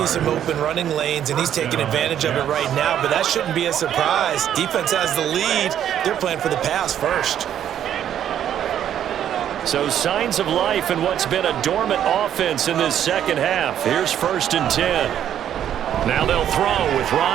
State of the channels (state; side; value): quieter; left; 10.2 dB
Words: some open running lanes, and he's taking advantage of it right now, but that shouldn't be a surprise. Defense has the lead. They're playing for the pass first. So signs of life in what's been a dormant offense in this 2nd half. Here's 1st and 10. Now they'll throw with